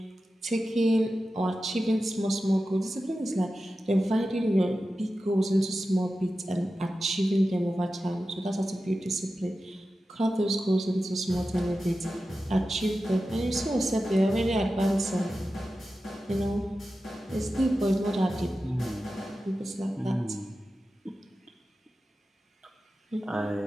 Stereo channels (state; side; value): normal; both; correlation 0.93